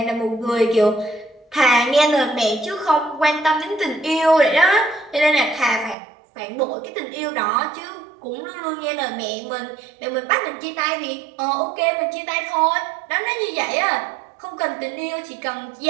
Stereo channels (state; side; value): drops out; left; at 6.0 s